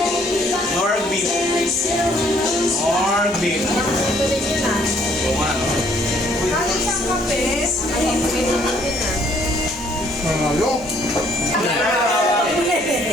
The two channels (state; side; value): normal; both; correlation 0.64